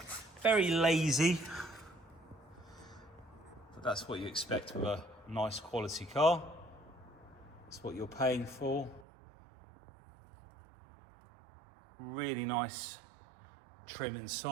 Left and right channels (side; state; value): left; drops out; at 9.1 s